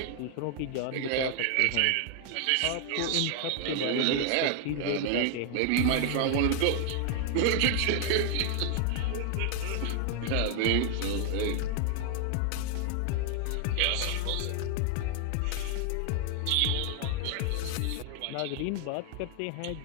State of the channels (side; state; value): both; different; correlation 0.00